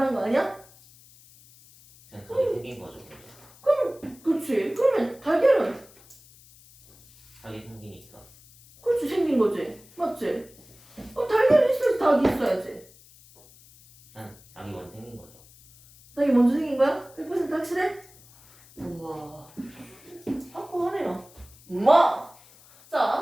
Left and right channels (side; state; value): left; noise; hiss, 25 dB below the sound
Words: 거 아니야? 생성이 생긴 거죠. 그럼 그렇지. 그러면 달걀은 닭이 생기니까. 그렇지 생긴 거지. 맞지? 달걀이 있어야지 닭이 있어야지. 닭이 먼저 생긴 거죠. 닭이 먼저 생긴 거야? 100% 확실해? 우와 확고하네요. 우와